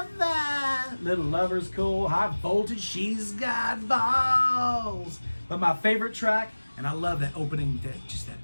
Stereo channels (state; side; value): inverted; both; correlation -1.00